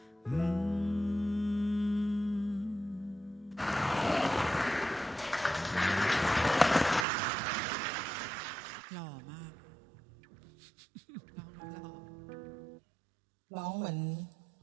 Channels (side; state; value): left; drops out; at 7.1 s